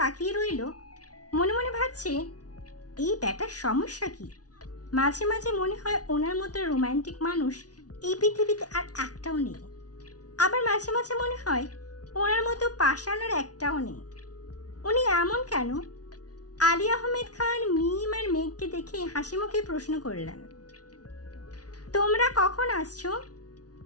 রইল। মনে মনে ভাবছে, এই ব্যাটার সমস্যা কি? মাঝে মাঝে মনে হয় ওনার মতো রোমান্টিক মানুষ এই পৃথিবীতে আর একটাও নেই। আবার মাঝে মাঝে মনে হয় ওনার মতো পাষাণ আর একটাও নেই। উনি এমন কেন? আলী আহমেদ খান মিম আর মেঘকে দেখে হাসি মুখে প্রশ্ন করলেন, তোমরা কখন আসছো?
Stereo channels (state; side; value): late; right; 0.68 ms